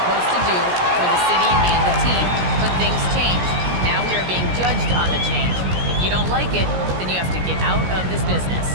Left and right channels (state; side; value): late; left; 17 ms